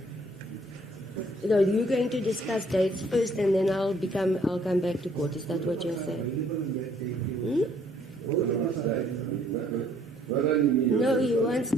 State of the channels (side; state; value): both; normal; correlation 0.63